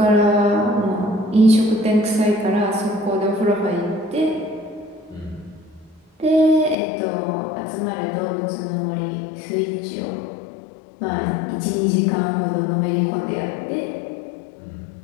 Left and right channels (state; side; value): drops out; right; at 6.8 s